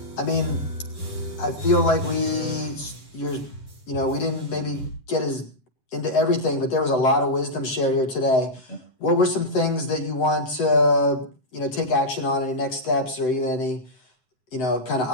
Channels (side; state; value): right; late; 7.8 ms